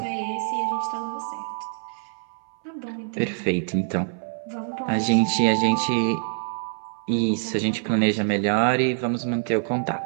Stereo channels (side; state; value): left; silent; 62 dB below the other